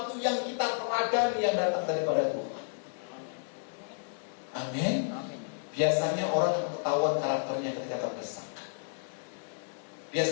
yang kita teladani yang datang daripada Tuhan. Amin. Biasanya orang ketahuan karakternya ketika terdesak.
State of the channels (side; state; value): right; silent; 57 dB below the other